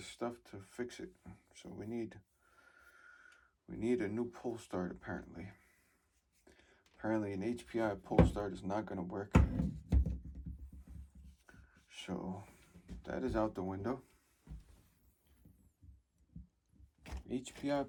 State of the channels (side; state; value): both; identical; correlation 1.00